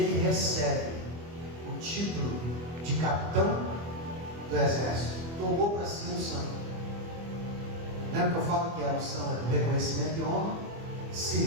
recebe o título de capitão do exército. Tomou para si a unção. Lembra que eu falo que a unção é do reconhecimento de honra?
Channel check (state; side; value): late; left; 24 ms